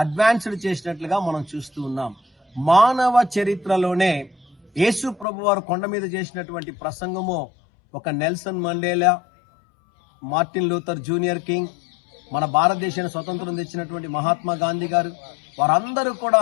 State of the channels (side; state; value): right; drops out; at 5.2 s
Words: చేసినట్లుగా మనం చూస్తూ ఉన్నాం. మానవ చరిత్రలోనే యేసు ప్రభు వారు కొండ మీద చేసినటువంటి ప్రసంగము ఒక Nelson Mandela, Martin Luther junior king, మన భారతదేశానికి స్వతంత్రం తెచ్చినటువంటి మహాత్మా గాంధీ గారు, వారందరూ